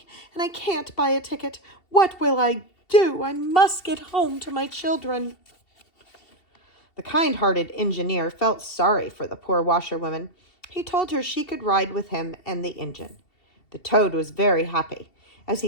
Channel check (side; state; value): right; late; 2.7 ms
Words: and I can't buy a ticket. What will I do? I must get home to my children. The kind-hearted engineer felt sorry for the poor washerwoman. He told her she could ride with him and the engine. The toad was very happy. As